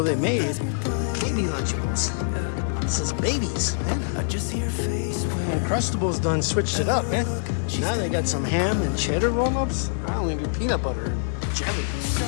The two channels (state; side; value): silent; right; digital silence